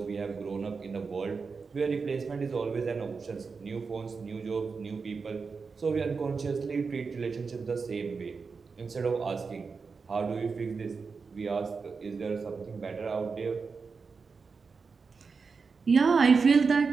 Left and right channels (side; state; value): left; quieter; 4.9 dB